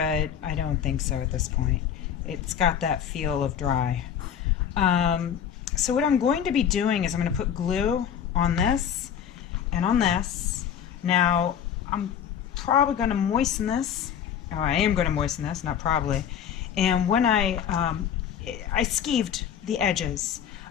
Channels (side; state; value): right; quieter; 8.8 dB